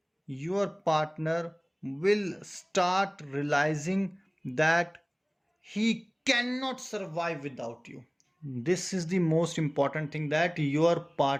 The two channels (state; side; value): identical; both; correlation 1.00